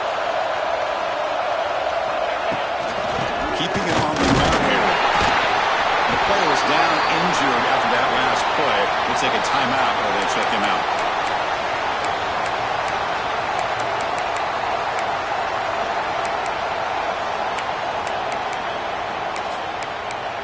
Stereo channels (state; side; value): identical; both; correlation 1.00